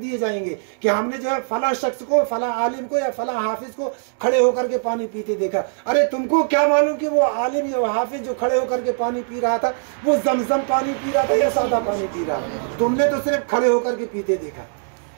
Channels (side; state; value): left; silent; 65 dB below the other